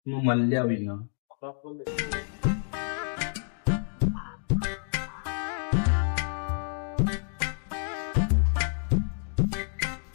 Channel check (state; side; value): silent; right; 56 dB below the other